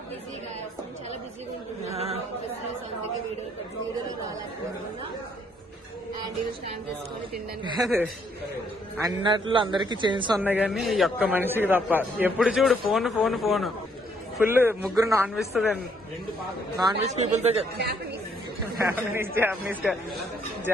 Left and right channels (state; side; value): normal; both; correlation 0.68